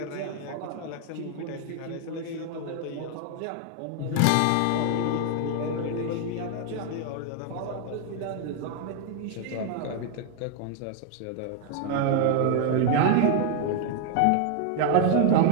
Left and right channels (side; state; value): both; different; correlation 0.00